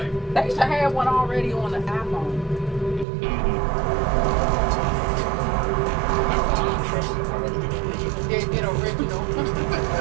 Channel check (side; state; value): left; drops out; at 3.1 s